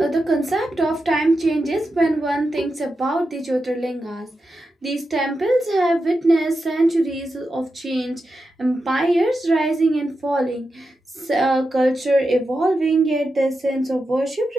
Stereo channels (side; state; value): both; normal; correlation 0.89